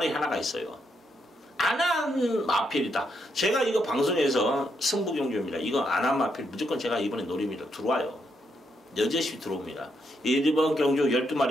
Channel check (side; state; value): both; normal; correlation 0.78